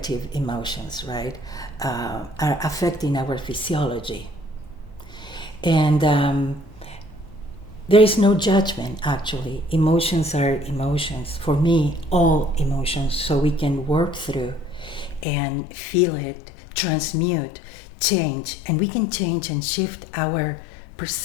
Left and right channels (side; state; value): right; drops out; at 15.2 s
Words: emotions, right, are affecting our physiology. And there is no judgment, actually. Emotions are emotions. For me, all emotions, so we can work through and feel it, transmute, change, and we can change and shift our